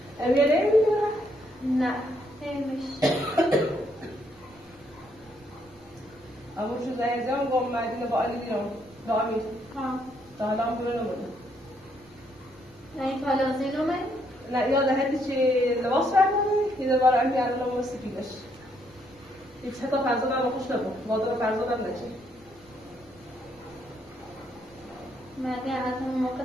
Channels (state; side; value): normal; both; correlation 0.73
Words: امیر نمیدونه؟ نه نمیشه اما چون زنگزم با مدینه با علی دیرم با امیر تا حالا هم ببینم بوده نه این پالازی نومه؟ نه یاد هدی چه لباس برداری یه در بار امیر الان هم سپیدش هیچ حتی فرزادم خوش نبود وادر فرزادم نچه مردی از اون موقع